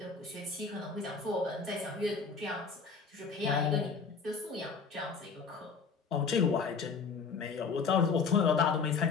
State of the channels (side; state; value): right; quieter; 5.2 dB